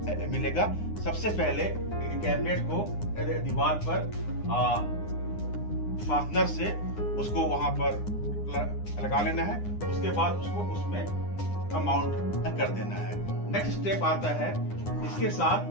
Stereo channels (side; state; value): right; late; 9.8 ms